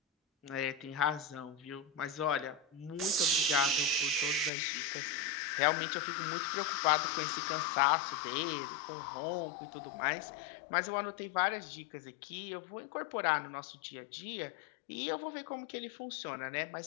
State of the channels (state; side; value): drops out; right; at 4.5 s